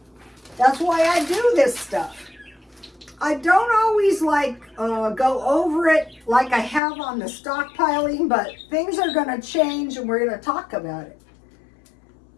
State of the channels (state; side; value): drops out; right; at 6.8 s